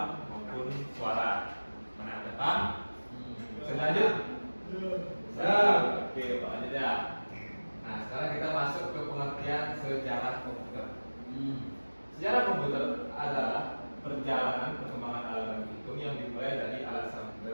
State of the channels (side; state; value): both; inverted; correlation -1.00